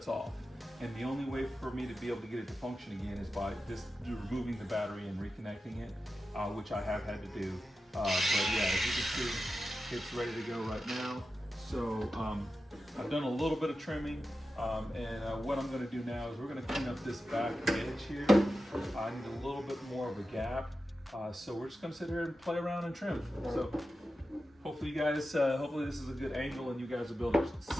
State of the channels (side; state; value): both; normal; correlation 0.92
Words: off. And the only way for me to be able to get it to function again is by just removing the battery and reconnecting it, which I have had to do. But yeah, as you can see, it's ready to go right now. So I've done a little bit of trimming, and what I'm going to do now is we're going to clean up this back edge here. I need a little bit more of a gap, so we're just going to sit here and play around and trim. So hopefully you guys, hopefully this is a good angle and you guys will be able to